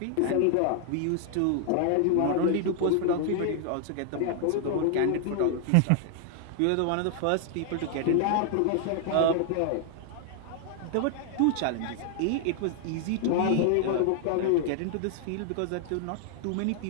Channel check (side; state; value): both; different; correlation 0.00